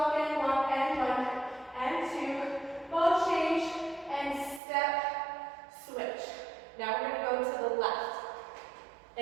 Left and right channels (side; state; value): left; drops out; at 4.6 s